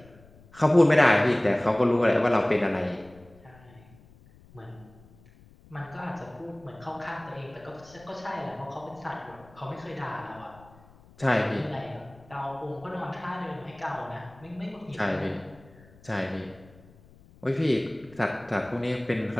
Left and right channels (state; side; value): noise; left; rumble, 25 dB below the sound